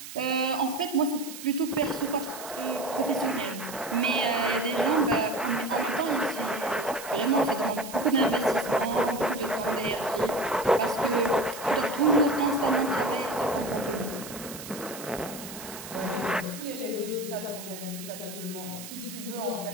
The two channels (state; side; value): noise; right; hiss, 12 dB below the sound